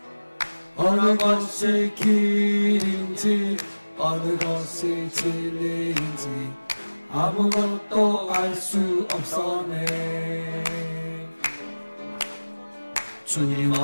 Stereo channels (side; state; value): both; inverted; correlation -1.00